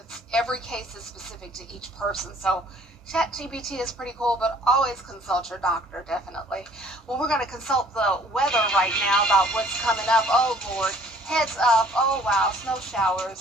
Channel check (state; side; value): normal; both; correlation 0.56